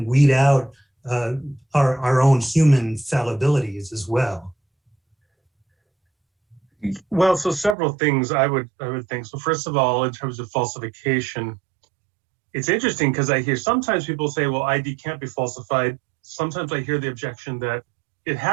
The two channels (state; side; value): drops out; left; at 7.8 s